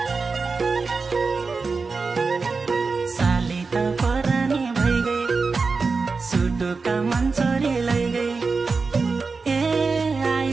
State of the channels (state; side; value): quieter; left; 4.4 dB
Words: साली त परानी भइगए, सुटुका मन चोरी लैगए। ए